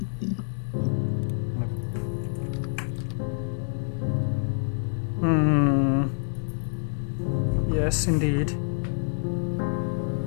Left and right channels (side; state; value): right; silent; digital silence